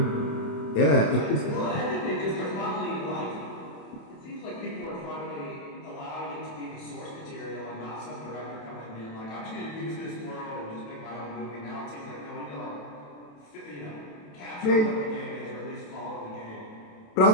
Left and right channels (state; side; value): late; right; 27 ms